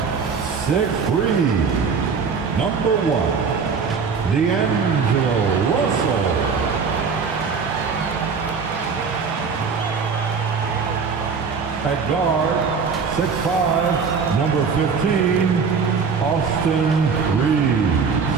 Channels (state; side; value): quieter; left; 5.5 dB